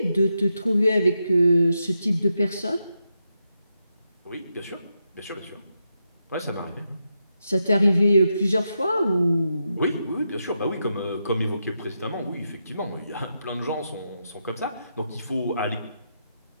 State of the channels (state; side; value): inverted; both; correlation -0.85